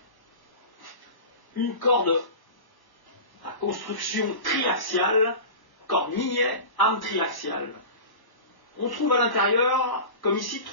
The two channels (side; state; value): right; late; 1.1 ms